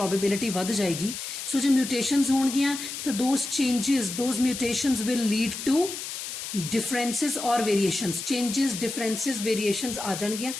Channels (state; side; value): noise; left; hiss, 7 dB below the sound